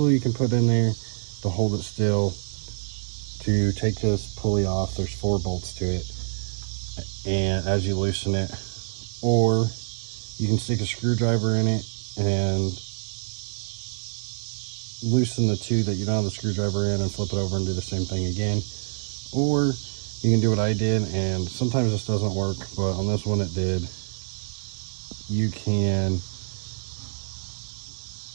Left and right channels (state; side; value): silent; left; 61 dB below the other